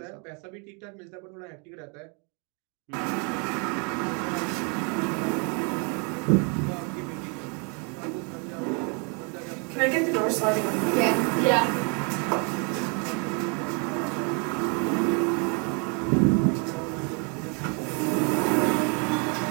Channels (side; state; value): left; quieter; 35.7 dB